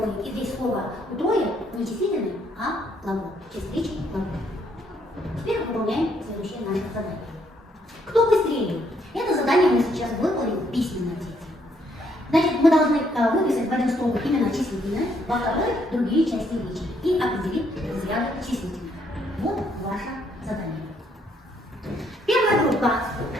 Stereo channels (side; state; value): both; normal; correlation 0.71